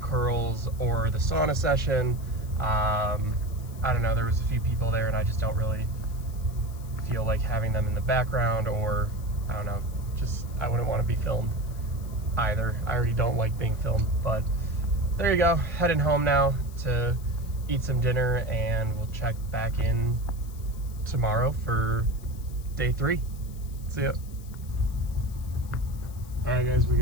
or the sauna session. I don't know, there was a few people there and I just don't really feel like having them in the background, or I don't know, just I wouldn't want to be filmed either. I already don't like being filmed. But there you go, heading home now to eat some dinner, and we'll check back in tomorrow for day 3. See ya. All right guys, we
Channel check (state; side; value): noise; left; hiss, 22 dB below the sound